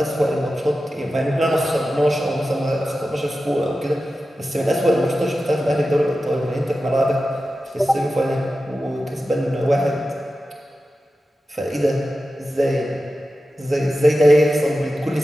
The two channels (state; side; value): normal; both; correlation 0.93